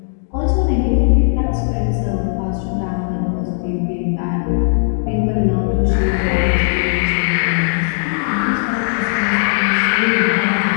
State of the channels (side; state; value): right; silent; 64 dB below the other